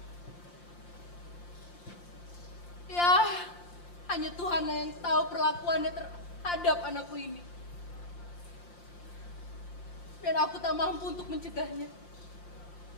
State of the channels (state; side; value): late; right; 5.7 ms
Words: Ya, hanya Tuhan yang tahu perlakuannya terhadap anakku ini. Dan aku tak mampu untuk mencegahnya.